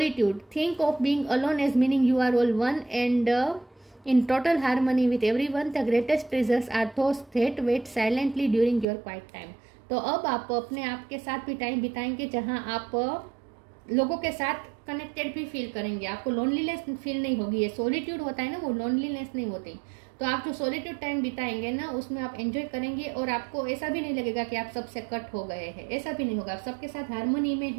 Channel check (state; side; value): drops out; left; at 8.8 s